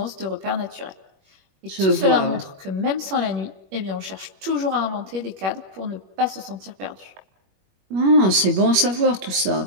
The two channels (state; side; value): late; left; 21 ms